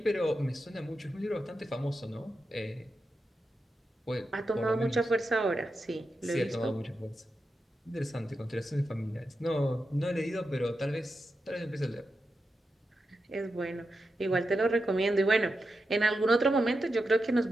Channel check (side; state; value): both; normal; correlation 0.89